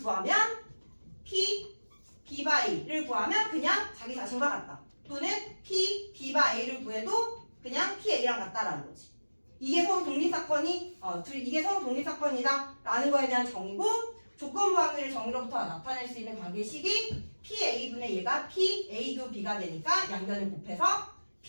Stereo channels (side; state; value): both; inverted; correlation -1.00